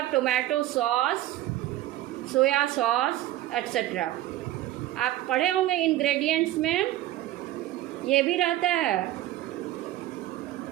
tomato sauce, soya sauce etc. आप पढ़े होंगे इंग्रेडिएंट्स में ये भी रहता है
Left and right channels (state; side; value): quieter; left; 14.7 dB